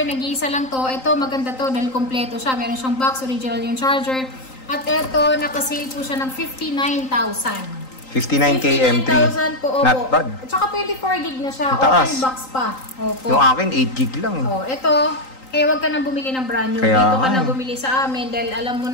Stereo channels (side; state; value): right; late; 3.8 ms